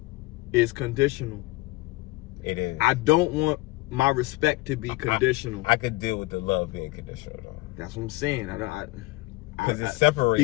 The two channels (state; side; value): quieter; right; 21.6 dB